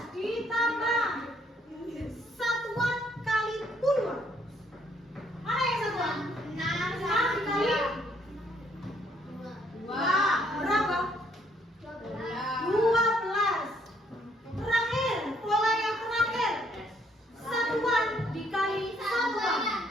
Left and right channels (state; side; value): normal; both; correlation 0.68